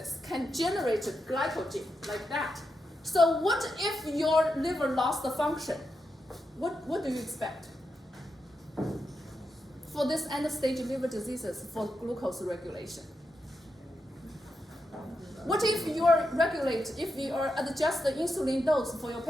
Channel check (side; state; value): both; normal; correlation 0.86